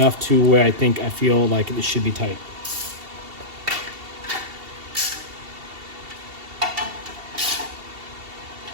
to where I feel like it should be tight.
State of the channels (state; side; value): late; left; 2.7 ms